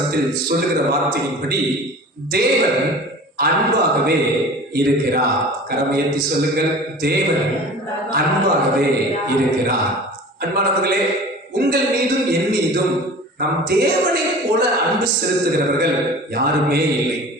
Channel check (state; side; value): normal; both; correlation 0.40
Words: சொல்லுகிற வார்த்தையின்படி தேவன் அன்பாகவே இருக்கிறார். கரமையத்தி சொல்லுங்கள், தேவன் அன்பாகவே இருக்கிறார். அன்பானவர்களே, உங்கள் மீதும் என் மீதும் நம் தேவனை போல அன்பு செலுத்துகிறவர்கள் யாருமே இல்லை.